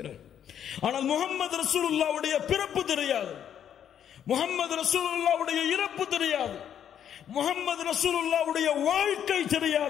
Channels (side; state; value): right; quieter; 9.4 dB